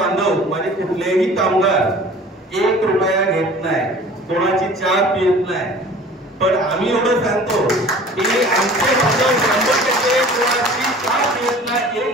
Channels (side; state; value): both; normal; correlation 0.45